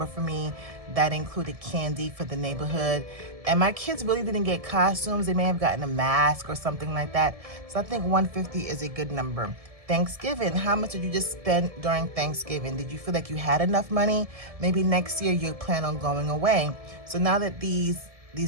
for me. That included candy for the neighborhood. And my kids really didn't get costumes. They may have gotten a mask or something like that. So I think $150 is a good number. Thanksgiving, how much did you just spend during Thanksgiving? Did you feel like you had enough money? Maybe next year you plan on going away. So now that these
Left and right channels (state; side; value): late; left; 1.7 ms